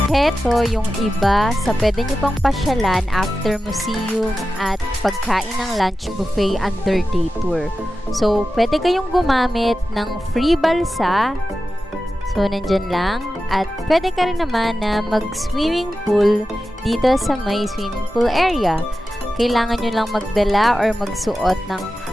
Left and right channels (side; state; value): both; normal; correlation 0.93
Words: Heto yung iba sa pwede nyo pang pasyalan after museum at pagkain ng lunch buffet under day tour. So, pwede kayong gumamit ng free balsa. So, nandyan lang. At pwede ka rin naman na mag-swimming pool dito sa may swimming pool area. Kailangan nyo lang magdala or magsuot ng